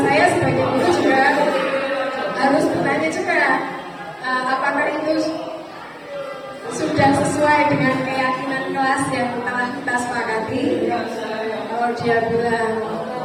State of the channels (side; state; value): both; identical; correlation 1.00